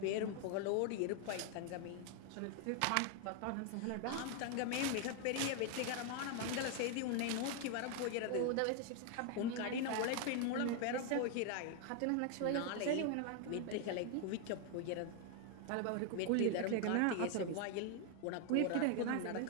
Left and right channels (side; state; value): both; different; correlation 0.00